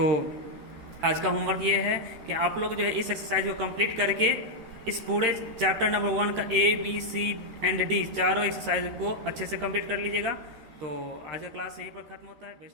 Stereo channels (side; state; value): left; late; 13 ms